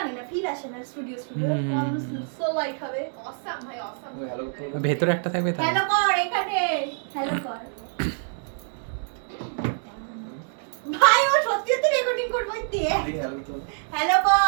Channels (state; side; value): silent; left; 61 dB below the other